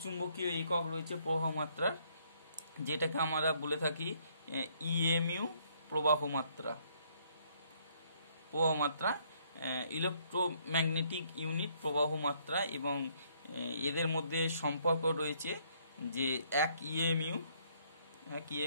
চুম্বকীয় একক রয়েছে প্রবাহ মাত্রার, যেটাকে আমরা বলে থাকি ইএমইউ প্রবাহ মাত্রা, ইলেকট্রোম্যাগনেটিক ইউনিট প্রবাহ মাত্রা। এবং এদের মধ্যে সম্পর্ক রয়েছে যে 1 ইএমইউ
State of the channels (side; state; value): both; inverted; correlation -0.66